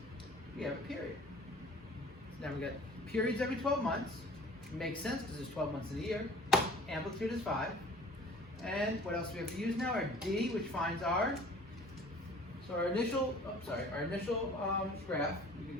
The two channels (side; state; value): both; normal; correlation 0.48